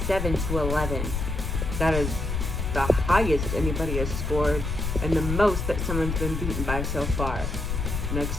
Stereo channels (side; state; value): left; noise; rumble, 2 dB below the sound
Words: That is the highest anybody has scored. And the most that someone's been beaten by so far.